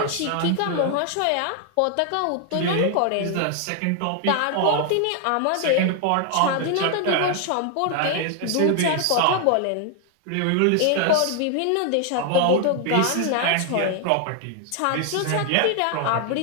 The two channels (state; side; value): different; both; correlation 0.00